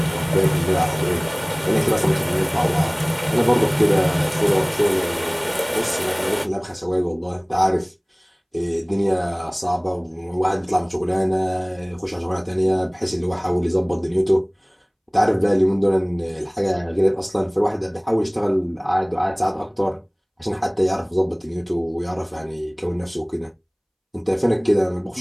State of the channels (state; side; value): identical; both; correlation 1.00